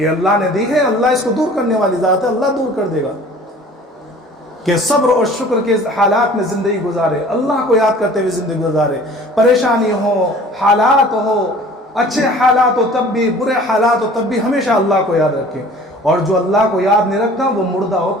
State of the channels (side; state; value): both; normal; correlation 0.48